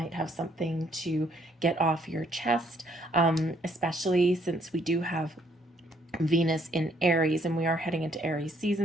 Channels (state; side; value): normal; both; correlation 0.67